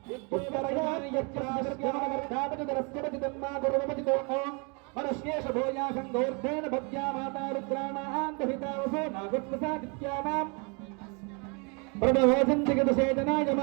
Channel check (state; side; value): quieter; left; 33.7 dB